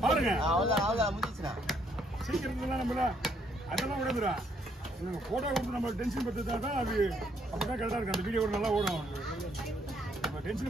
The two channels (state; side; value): normal; both; correlation 0.69